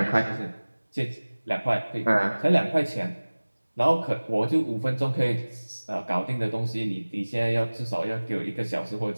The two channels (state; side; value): inverted; both; correlation -1.00